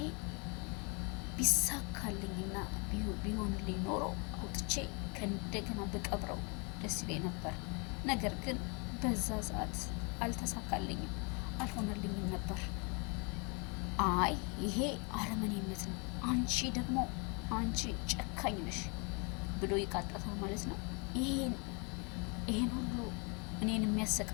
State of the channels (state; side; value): quieter; right; 33.0 dB